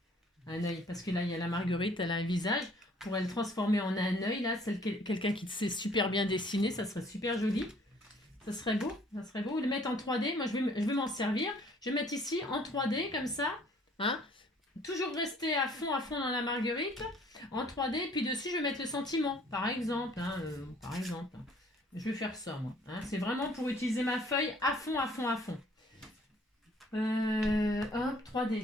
parce que là il y a la Marguerite, elle a un visage, on pourrait le transformer en un œil, là, quelqu'un qui sait super bien dessiner, ça serait super joli, ça serait beau, ou le mettre en 3D, moi je vais m'en servir, je vais mettre ici en 3D, comme ça, hein. Toujours rester à fond dans la Marguerite en 3D, puis dessus je vais mettre le sentiment, par exemple. Hein, Je vais faire ça, moi. Hein, c'est vraiment pour utiliser ma feuille à fond. Hop,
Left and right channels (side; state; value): both; normal; correlation 0.58